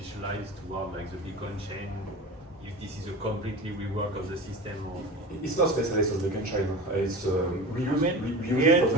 toward like the Beacon chain, if this is a completely rework of the system, or it's not specialized on the Beacon chain. It's we use it for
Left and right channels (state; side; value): normal; both; correlation 0.32